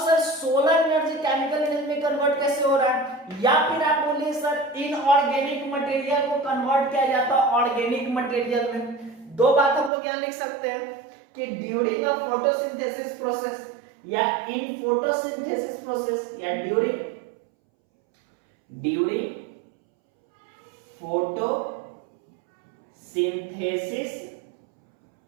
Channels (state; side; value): drops out; left; at 9.9 s